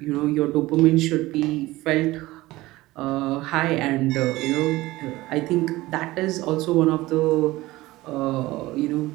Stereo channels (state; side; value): quieter; left; 18.6 dB